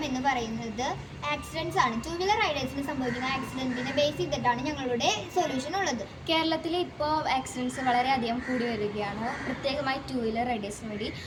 എന്ന് പറയുന്നത് ആക്സിഡൻസ് ആണ്. ടു വീലർ റൈഡേഴ്സിന് സംഭവിക്കുന്ന ആക്സിഡൻറ്റിനെ ബേസ് ചെയ്തിട്ടാണ് ഞങ്ങളുടെ സൊല്യൂഷൻ ഉള്ളത്. കേരളത്തിൽ ഇപ്പോൾ ആക്സിഡൻറ്റ്സ് വളരെയധികം കൂടി വരികയാണ്. പ്രത്യേകമായി ടു വീലർ റൈഡേഴ്സിന് വേണ്ടി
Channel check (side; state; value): both; identical; correlation 1.00